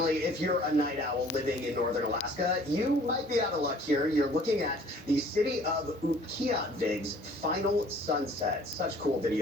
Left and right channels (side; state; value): both; normal; correlation 0.53